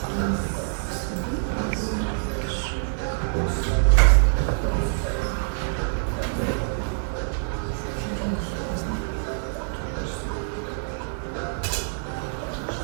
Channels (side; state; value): left; silent; 58 dB below the other